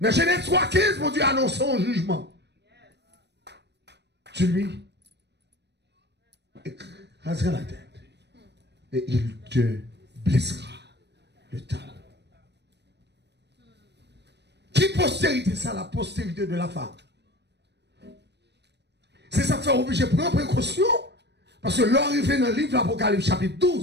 Genèse 3,15, mon Dieu annonce un jugement. Tu lui écraseras la tête et il te blessera le talon. Qui postérité ça? La postérité de la femme. C'est ça qui fait obligé de prendre précaution Parce que l'arrivée dans le livre d'Apocalypse chapitre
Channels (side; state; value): left; late; 0.50 ms